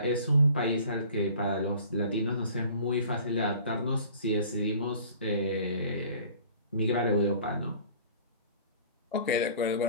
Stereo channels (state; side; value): inverted; both; correlation -0.49